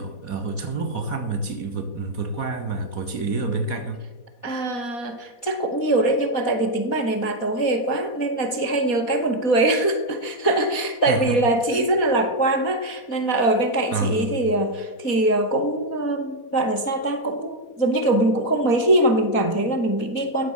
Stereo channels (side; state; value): right; late; 4.2 ms